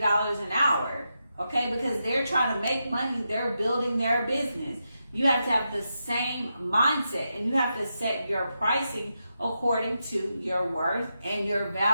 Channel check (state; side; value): inverted; both; correlation -0.86